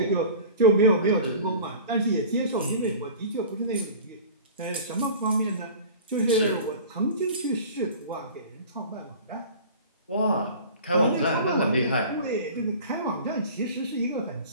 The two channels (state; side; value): inverted; both; correlation -0.40